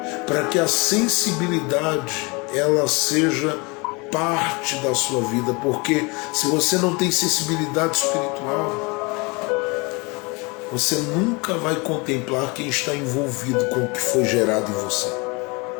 para que a sensibilidade ela seja parte da sua vida, porque se você não tem sensibilidade espiritual, você nunca vai contemplar quem está envolvido com o que foi gerado em você.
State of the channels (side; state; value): right; quieter; 27.9 dB